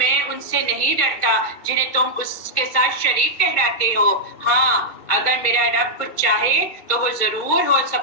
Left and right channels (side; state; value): right; late; 2.2 ms